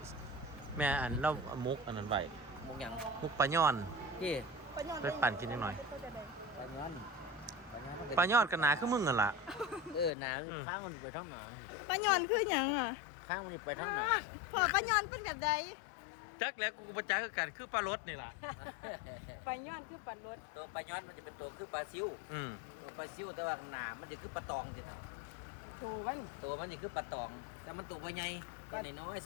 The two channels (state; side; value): drops out; right; at 10.1 s